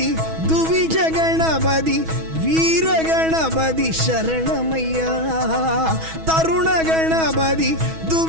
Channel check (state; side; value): late; left; 6.2 ms